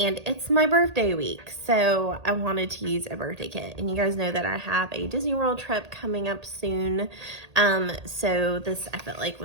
my birthday week, so I wanted to use a birthday kit. And you guys know that I have a Disney World trip coming up soon, so this I felt like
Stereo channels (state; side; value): late; left; 1.8 ms